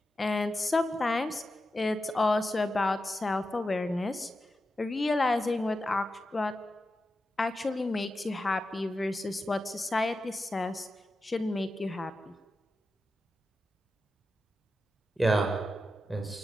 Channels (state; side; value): normal; both; correlation 0.91